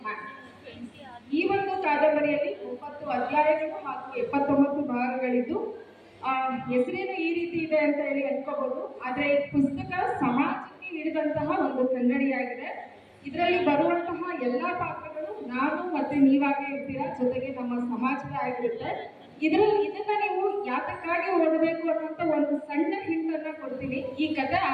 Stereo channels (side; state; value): both; identical; correlation 1.00